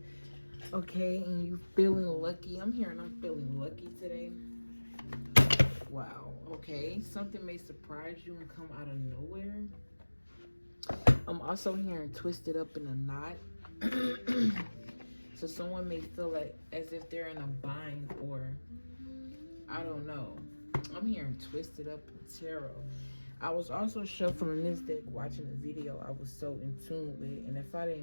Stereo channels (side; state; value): both; inverted; correlation -1.00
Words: Okay, and you feeling lucky. I'm feeling lucky today. Wow, okay. Something may surprise you and come out of nowhere. I'm also hearing twisted up in a knot. So someone may feel like as if they're in a bind, or I don't know. I'm hearing twisted up in tarot. I was also shuffling this deck, watching the video I was so in tune with, and if I